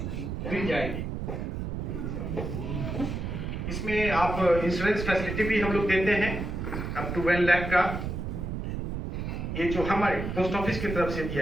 मिल जाएगी। इसमें आप इंश्योरेंस फैसिलिटी भी हम लोग देते हैं अप टू 1 लाख का। ये जो हमारे पोस्ट ऑफिस की तरफ से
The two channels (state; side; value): noise; right; rumble, 4 dB below the sound